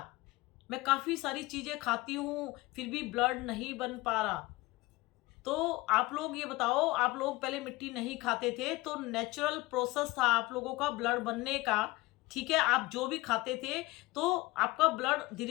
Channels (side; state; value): right; quieter; 20.9 dB